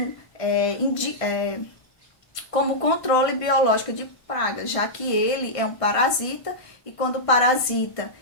como controle biológico de pragas, já que ele é um parasita, e quando o parasita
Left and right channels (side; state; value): right; late; 1.5 ms